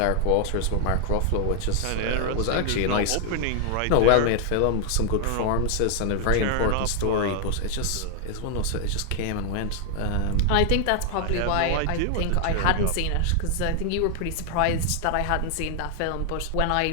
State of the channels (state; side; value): different; both; correlation 0.00